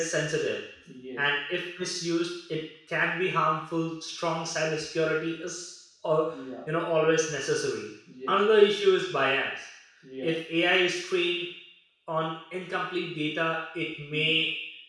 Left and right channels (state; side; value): identical; both; correlation 1.00